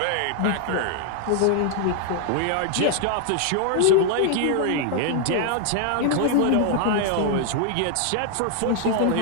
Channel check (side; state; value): both; different; correlation 0.00